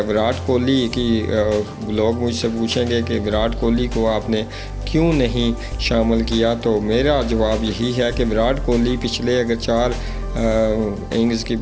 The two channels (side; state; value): both; identical; correlation 1.00